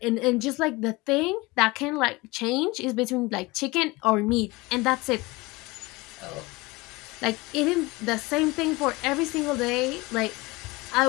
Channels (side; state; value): right; quieter; 22.9 dB